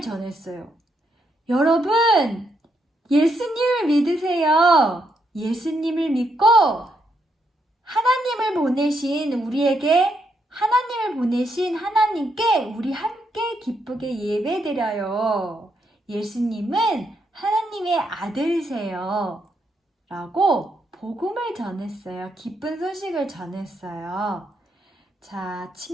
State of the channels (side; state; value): both; normal; correlation 0.78